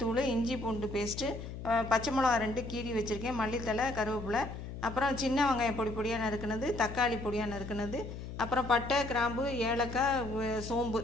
இஞ்சி பூண்டு பேஸ்ட்டு, பச்சை மிளகா 2 கீரி வச்சுருக்கேன், மல்லித்தலை, கருவேப்பிலை, அப்புறம் சின்ன வெங்காயம் பொடி பொடியாக நறுக்குனது, தக்காளி பொடியாக நறுக்குனது, அப்புறம் பட்டை, கிராம்பு, ஏலக்காய், சோம்பு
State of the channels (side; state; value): left; noise; hum, 9 dB below the sound